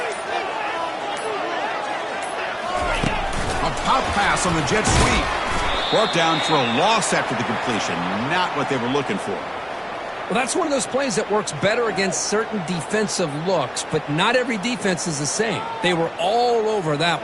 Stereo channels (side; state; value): both; identical; correlation 1.00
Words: A pop pass on the jet sweep. Brought down for a loss after the completion. Not what they were looking for. Well, that's one of those plays that works better against certain defensive looks, but not every defense is the same. They were all over that